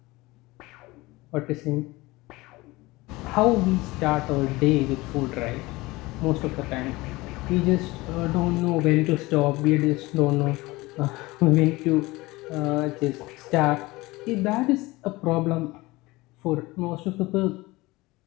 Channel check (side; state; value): right; quieter; 21.1 dB